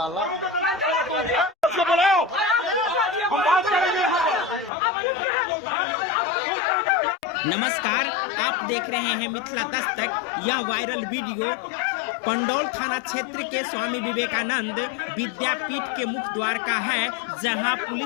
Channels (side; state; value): right; drops out; at 4.7 s